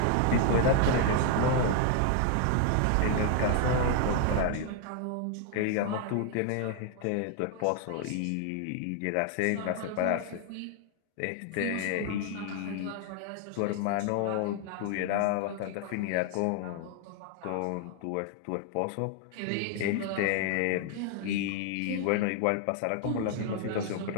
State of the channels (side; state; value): both; different; correlation 0.00